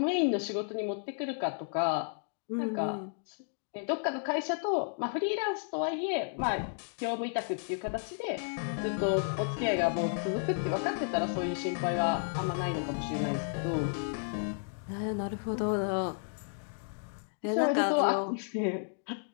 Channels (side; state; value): right; silent; digital silence